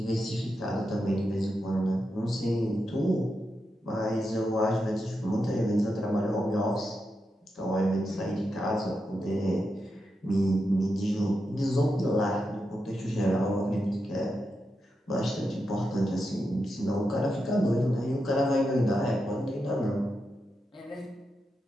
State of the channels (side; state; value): both; normal; correlation 0.87